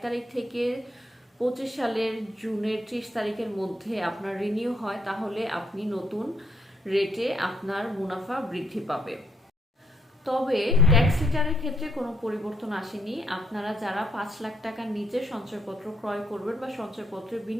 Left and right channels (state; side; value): normal; both; correlation 0.73